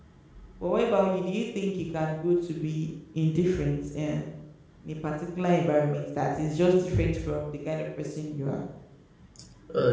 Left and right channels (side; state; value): both; identical; correlation 1.00